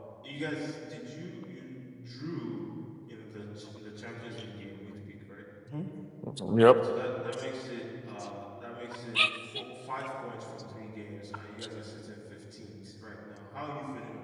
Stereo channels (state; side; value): identical; both; correlation 1.00